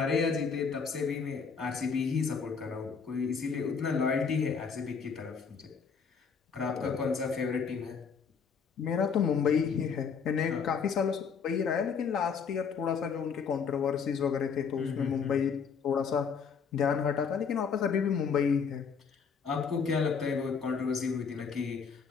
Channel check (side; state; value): right; quieter; 6.1 dB